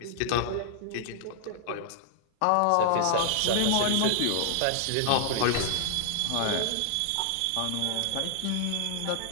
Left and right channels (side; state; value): both; different; correlation 0.00